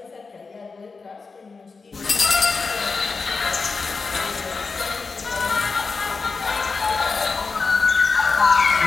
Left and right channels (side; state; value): right; quieter; 4.5 dB